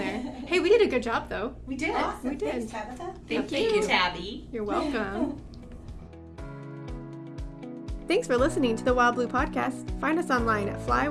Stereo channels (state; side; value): identical; both; correlation 1.00